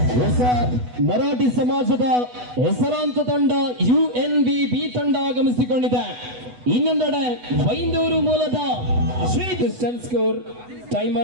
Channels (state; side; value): late; left; 8.1 ms